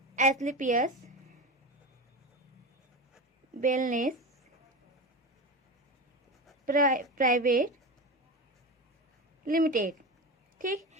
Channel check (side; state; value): both; normal; correlation 0.23